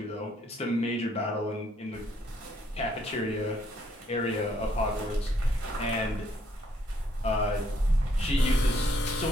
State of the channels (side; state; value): both; normal; correlation 0.69